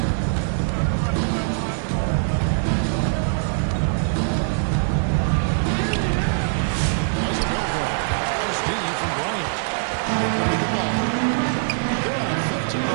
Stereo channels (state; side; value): silent; left; digital silence